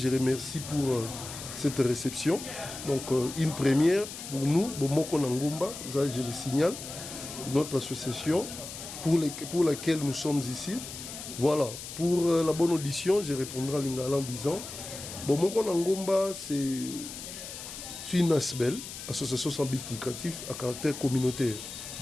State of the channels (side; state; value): left; noise; hiss, 10 dB below the sound